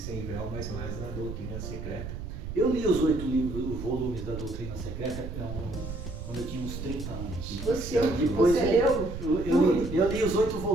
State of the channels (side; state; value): right; noise; rumble, 8 dB below the sound